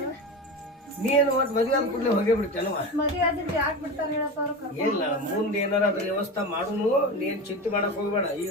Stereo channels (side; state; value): both; normal; correlation 0.25